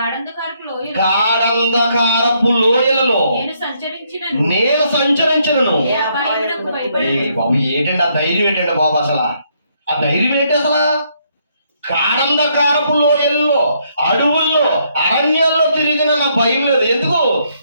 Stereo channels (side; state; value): both; inverted; correlation -0.72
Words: గాఢంధకారపు లోయలలో నేను సంచరించను. బాబు ఏంటండి ఆ ధైర్యం? ఏంటండి బాబు అసలు ఆ ధైర్యం ఏంటి అసలు? గాఢంధకారపు లోయల్లో, అడవుల్లో, అరణ్యాల్లో తిరిగిన నా భయం లేదు. ఎందుకు?